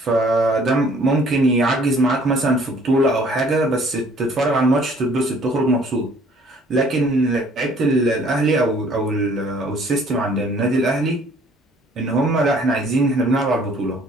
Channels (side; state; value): both; normal; correlation 0.57